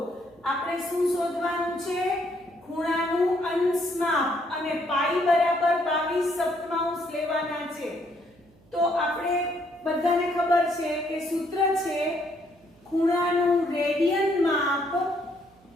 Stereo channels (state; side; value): noise; right; hum, 29 dB below the sound